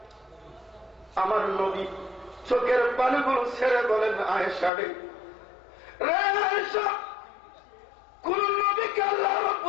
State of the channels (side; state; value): right; drops out; at 4.7 s